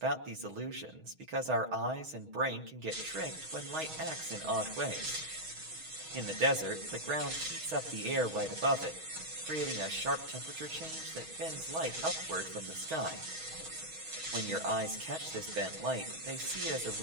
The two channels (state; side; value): late; left; 6.3 ms